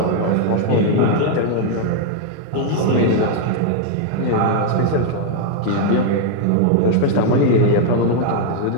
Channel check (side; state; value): both; different; correlation 0.00